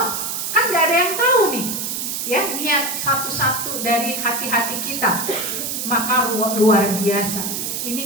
kan gak ada yang tahu nih, ya, niat satu-satu dari hati-hati kita, maka luar biasa. Ini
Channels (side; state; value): right; noise; hiss, 3 dB below the sound